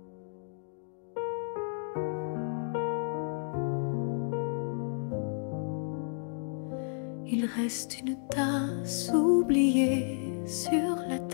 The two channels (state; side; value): silent; right; digital silence